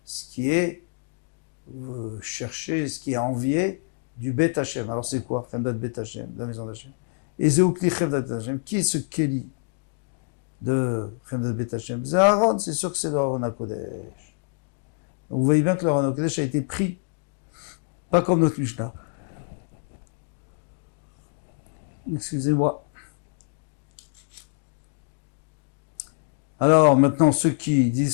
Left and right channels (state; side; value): silent; right; digital silence